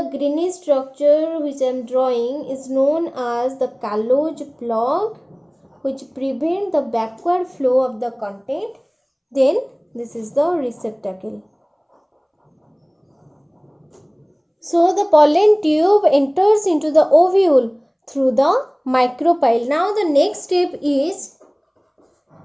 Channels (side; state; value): both; identical; correlation 1.00